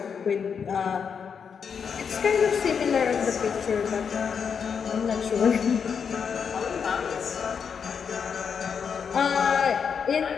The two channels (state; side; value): quieter; right; 6.6 dB